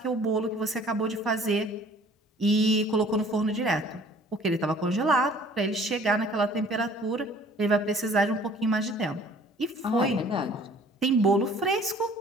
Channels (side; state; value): both; normal; correlation 0.53